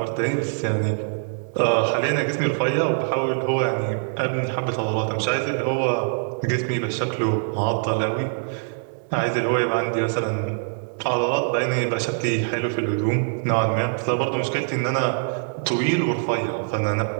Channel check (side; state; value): left; silent; 63 dB below the other